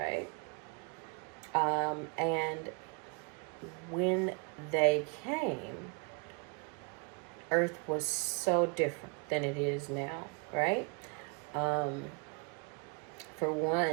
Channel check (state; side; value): quieter; left; 35.0 dB